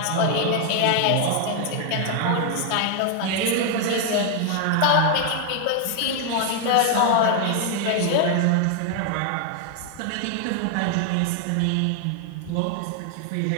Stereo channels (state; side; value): different; both; correlation 0.00